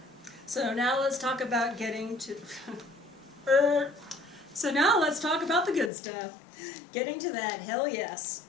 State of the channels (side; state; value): right; drops out; at 5.9 s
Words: So now let's talk about getting to... So now let's talk about the good stuff. Getting to that hell yes.